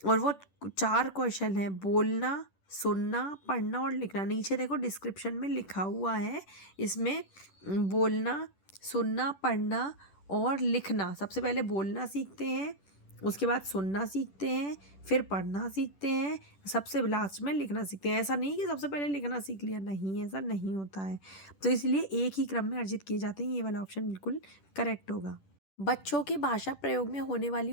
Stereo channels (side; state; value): right; late; 10 ms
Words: और वो 4 कौशल हैं: बोलना, सुनना, पढ़ना और लिखना। नीचे देखो डिस्क्रिप्शन में लिखा हुआ है, इसमें बोलना, सुनना, पढ़ना और लिखना। सबसे पहले बोलना सीखते हैं, उसके बाद सुनना सीखते हैं, फिर पढ़ना सीखते हैं, सबसे लास्ट में लिखना सीखते हैं। ऐसा नहीं कि सबसे पहले लिखना सीख लिया, नहीं, ऐसा नहीं होता है। तो इसलिए एक ही क्रम में अर्जित किए जाते हैं। ये वाला ऑप्शन बिल्कुल करेक्ट होगा। बच्चों के भाषा प्रयोग में होने